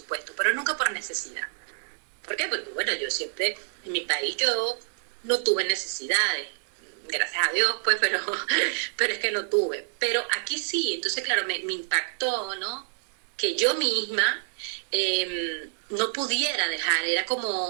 pero nunca por necesidad. ¿Por qué? Porque, bueno, yo siempre, en mi país yo no tuve necesidades, gracias a Dios, pues, pero es que no tuve. Pero aquí sí, entonces, claro, me impactó, ¿no? Que yo misma no pudiera dejar, era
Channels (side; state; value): left; silent; 58 dB below the other